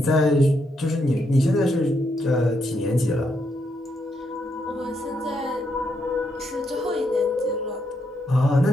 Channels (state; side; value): normal; both; correlation 0.78